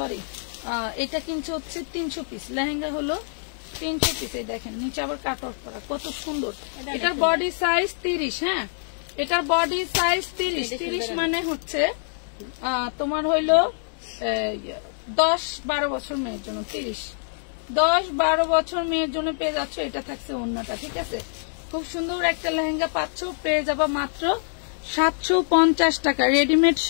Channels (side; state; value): right; silent; digital silence